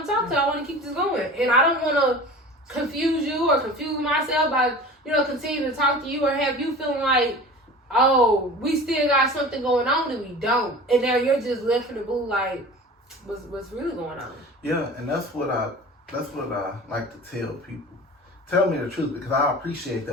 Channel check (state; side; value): normal; both; correlation 0.38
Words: talk to him. I want to keep this going. And I don't want to confuse you or confuse myself by, continuing to talk to you or have you feeling like, oh, we still got something going on and we don't. And now you're just left in the blue like, what's really going on? Yeah, and that's what I like to tell people. Tell me the truth, because I appreciate